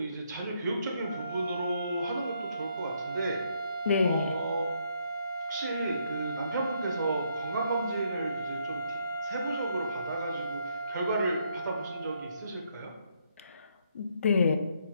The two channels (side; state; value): both; inverted; correlation -0.73